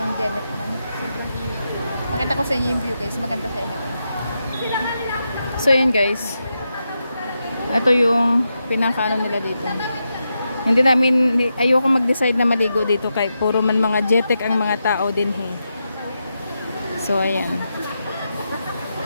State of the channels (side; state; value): both; inverted; correlation -0.87